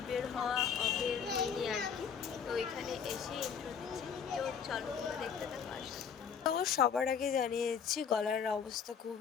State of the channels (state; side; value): quieter; right; 7.1 dB